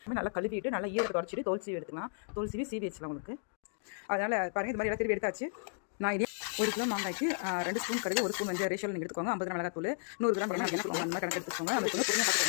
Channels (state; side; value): silent; right; digital silence